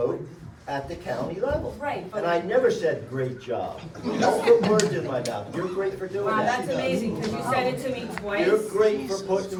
at the county level. Right, but. And I never said great job. Don't put words in my mouth. You're great for doing Wow, that. that's amazing, because you said it to me twice. You're great for putting words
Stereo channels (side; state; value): both; identical; correlation 1.00